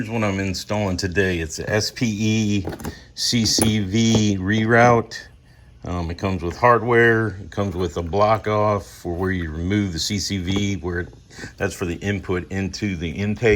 what I'm installing today. It's a SPE CCV Reroute. It comes with hardware. It comes with a block off for where you remove the CCV, that's for the input into the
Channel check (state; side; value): identical; both; correlation 1.00